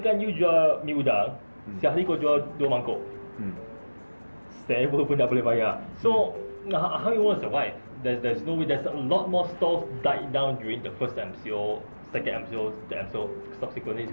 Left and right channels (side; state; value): both; inverted; correlation -1.00